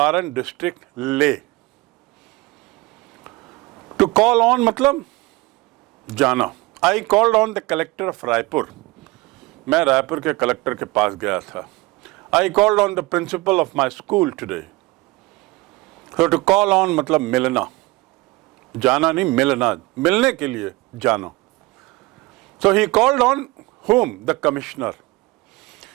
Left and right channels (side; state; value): left; quieter; 21.9 dB